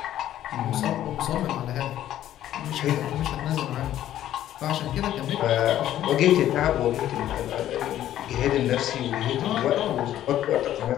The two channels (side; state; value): right; quieter; 12.3 dB